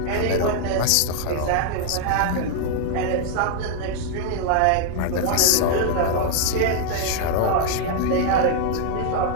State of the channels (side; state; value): both; different; correlation 0.00